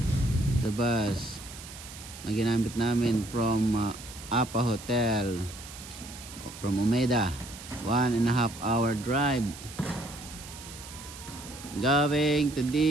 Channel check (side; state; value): right; noise; hiss, 14 dB below the sound